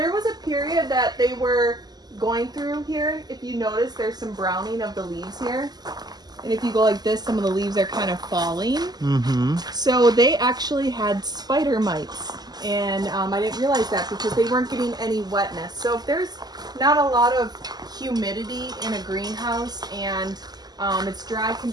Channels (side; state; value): left; late; 0.20 ms